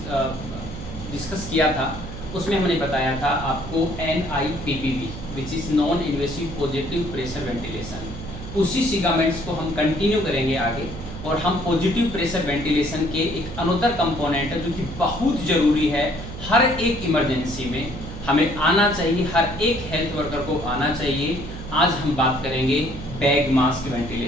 डिस्कस किया था उसमें हमने बताया था आपको NIPPV which is non invasive positive pressure ventilation. उसी सिगामेंट्स को हम कंटिन्यू करेंगे आगे और हम पॉजिटिव प्रेशर वेंटिलेशन के एक अनोदर कंपोनेंट है जो कि बहुत ज़रूरी है। हर एक इमरजेंसी में हमें आना चाहिए, हर एक हेल्थ वर्कर को आना चाहिए। आज हम बात करेंगे बैग मास्क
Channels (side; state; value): right; noise; hum, 10 dB below the sound